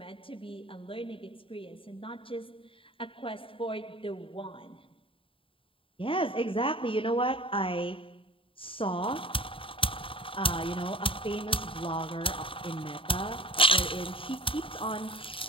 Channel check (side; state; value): right; late; 0.26 ms